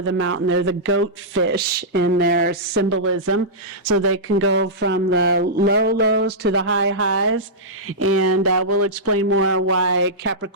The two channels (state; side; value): normal; both; correlation -0.13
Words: the mountain. They're the goat fish in their symbolism, so they can go from the low lows to the high highs, and we'll explain more why